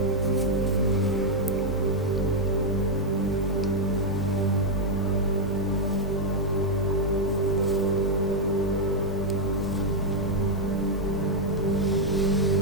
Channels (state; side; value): normal; both; correlation -0.01